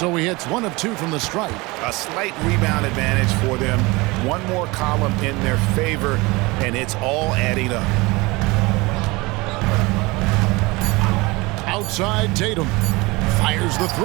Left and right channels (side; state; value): left; quieter; 23.6 dB